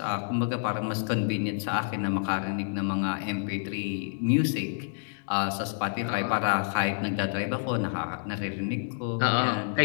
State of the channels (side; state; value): right; silent; digital silence